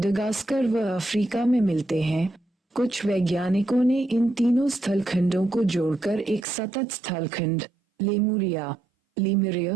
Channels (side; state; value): left; drops out; at 6.5 s